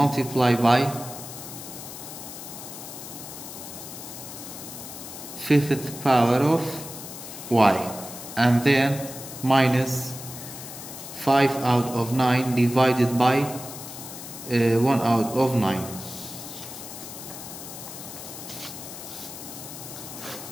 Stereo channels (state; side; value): noise; left; hiss, 11 dB below the sound